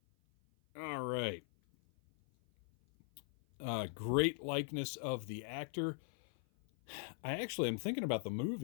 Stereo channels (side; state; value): right; silent; 51 dB below the other